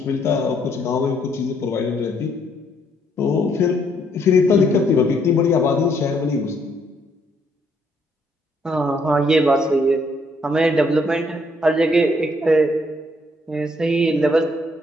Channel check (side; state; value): both; normal; correlation 0.70